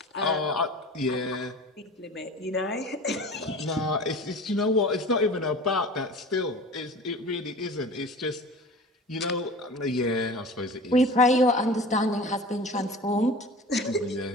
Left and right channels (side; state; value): both; normal; correlation 0.38